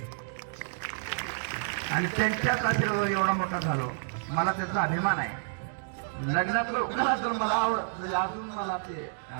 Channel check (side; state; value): left; silent; digital silence